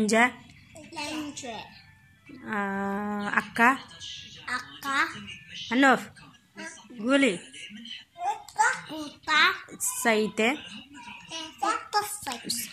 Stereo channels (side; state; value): both; identical; correlation 1.00